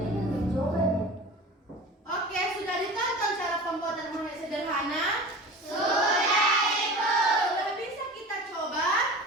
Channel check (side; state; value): both; normal; correlation 0.36